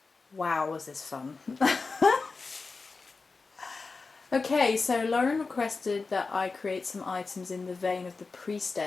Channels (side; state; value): right; quieter; 4.2 dB